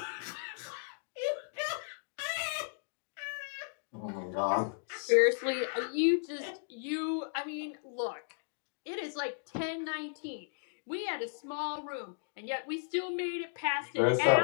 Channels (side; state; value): right; silent; digital silence